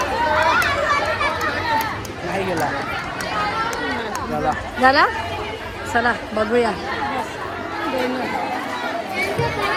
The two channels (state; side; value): identical; both; correlation 1.00